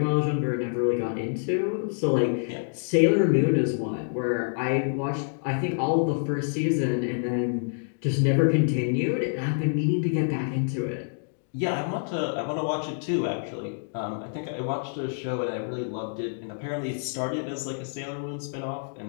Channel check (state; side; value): silent; right; digital silence